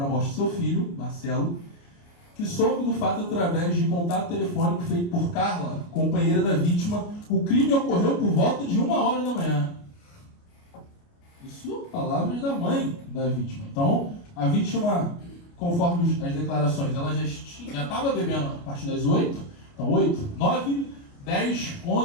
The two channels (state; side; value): late; right; 29 ms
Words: na morte do seu filho, Marcelo, que soube do fato através de contato telefônico feito por Carla, companheira da vítima. O crime ocorreu por volta de 1h da manhã. Isso, palavras da mãe da vítima. Então, a vítima, conforme as declarações, ela já estava bebendo a partir das 8. Então, 8, 9, 10,